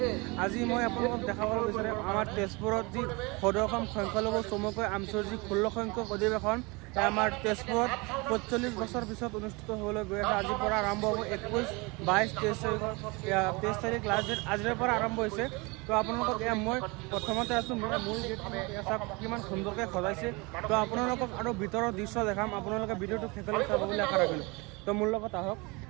আজি মই আপোনালোকক দেখাব বিচাৰিম আমাৰ তেজপুৰত যি সদৌ অসম সংখ্যালঘু চমুকৈ আমছৰ যি 16 সংখ্যক অধিৱেশন আমাৰ তেজপুৰত 45 বছৰ পিছত অনুষ্ঠিত হ'বলৈ গৈ আছে। আজিৰ পৰা আৰম্ভ হ'ব 21, 22, 23 তাৰিখ লাষ্ট ডেট আজিৰ পৰা আৰম্ভ হৈছে। তো আপোনালোকক মই প্ৰথমতে আছোঁ মূল গেটখন কিমান সুন্দৰকৈ সজাইছে। তো আপোনালোকক আৰু ভিতৰৰ দৃশ্য দেখাম, আপোনালোকে ভিডিঅ'টো শেষলৈ চাব বুলি আশা ৰাখিলোঁ। তো মোৰ লগত আহক।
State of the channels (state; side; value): quieter; left; 26.9 dB